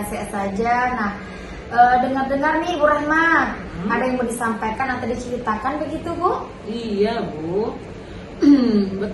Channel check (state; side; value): identical; both; correlation 1.00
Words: saja. Nah, dengar-dengar nih Ibu Rahma, ada yang mau disampaikan atau diceritakan begitu Bu? Iya Bu.